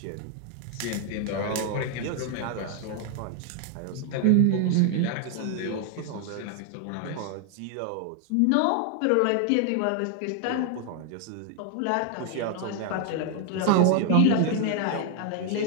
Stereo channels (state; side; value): different; both; correlation 0.00